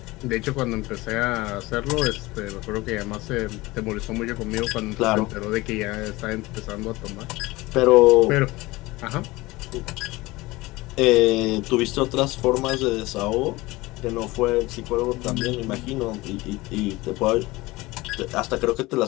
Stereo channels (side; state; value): right; quieter; 20.7 dB